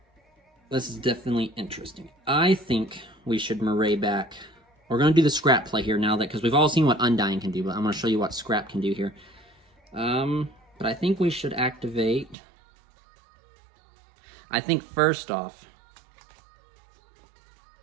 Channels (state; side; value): drops out; left; at 12.4 s